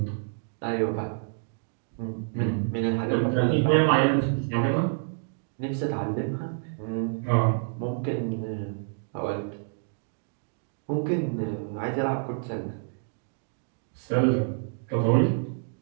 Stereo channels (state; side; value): silent; left; digital silence